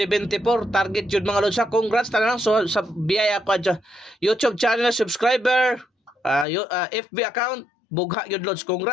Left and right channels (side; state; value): right; drops out; at 6.5 s